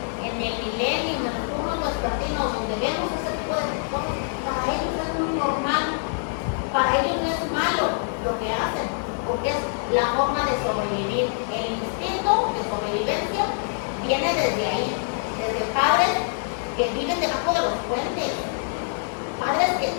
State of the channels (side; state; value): right; silent; digital silence